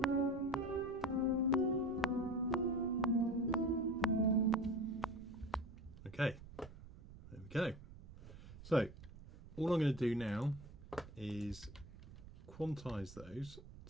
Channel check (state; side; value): noise; right; rumble, 16 dB below the sound